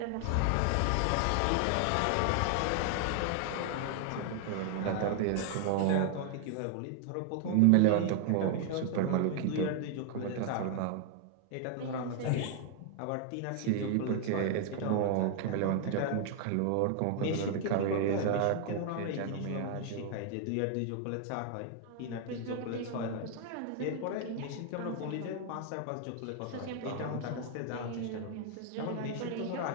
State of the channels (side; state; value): both; different; correlation 0.00